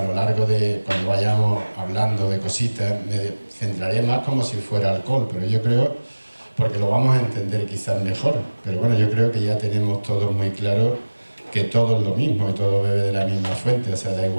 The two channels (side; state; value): both; inverted; correlation -1.00